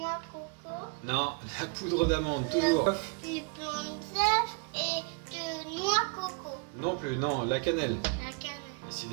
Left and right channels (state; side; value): quieter; left; 29.6 dB